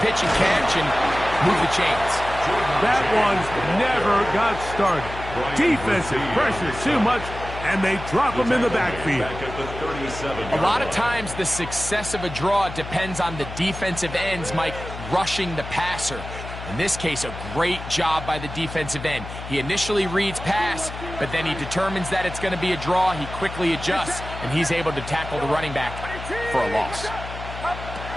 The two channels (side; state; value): left; noise; hum, 10 dB below the sound